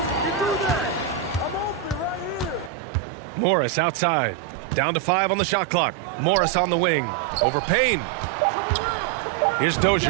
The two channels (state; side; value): drops out; left; at 2.7 s